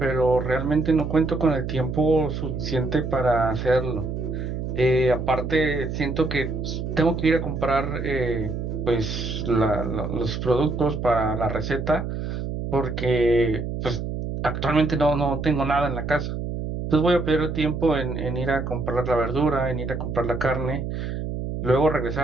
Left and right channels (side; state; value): right; noise; hum, 4 dB below the sound